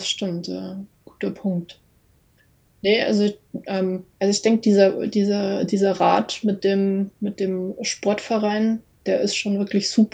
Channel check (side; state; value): both; identical; correlation 1.00